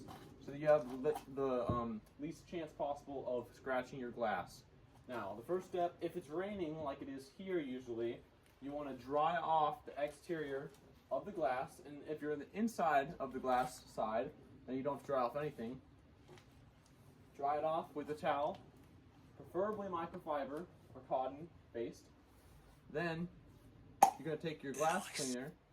so that you have the least chance possible of scratching your glass. Now, the first step, if it's raining like it is here usually, you want to dry off the exterior of the glass, and if you're in the inside of the glass side, then you don't have to dry off anything. Dry it off with a towel, preferably microfiber or cotton based. Then you're going to take your glass cleaner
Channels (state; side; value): identical; both; correlation 1.00